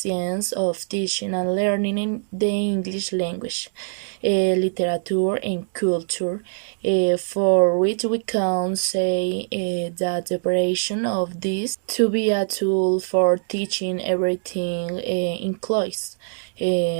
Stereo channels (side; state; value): left; silent; digital silence